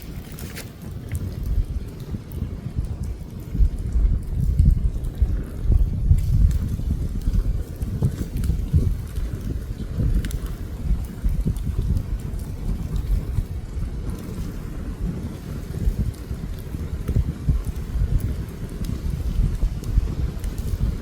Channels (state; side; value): identical; both; correlation 1.00